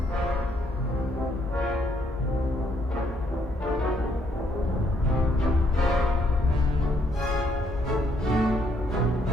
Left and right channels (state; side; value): normal; both; correlation 0.70